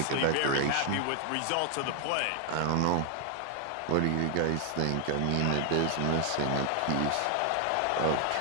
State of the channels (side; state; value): both; different; correlation 0.00